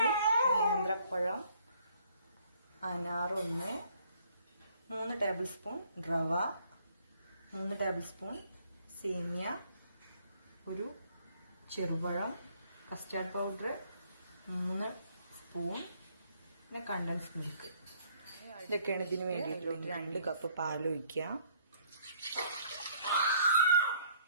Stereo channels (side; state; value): both; inverted; correlation -0.63